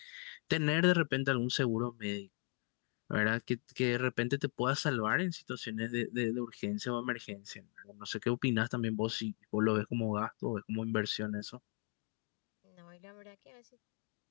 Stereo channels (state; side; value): quieter; right; 39.4 dB